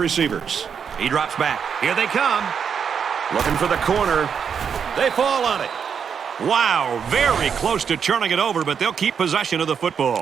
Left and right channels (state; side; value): quieter; left; 7.0 dB